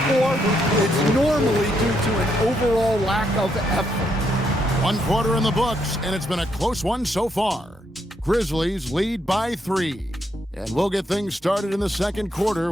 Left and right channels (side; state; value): both; normal; correlation 0.77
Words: poor, it's normally due to an overall lack of effort. 1 quarter in the books, and it's been a close one so far. Grizzlies lead by 3. And we'll get things started in the second quarter